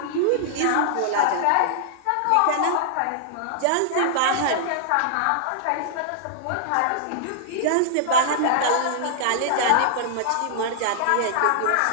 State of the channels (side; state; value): both; different; correlation -0.01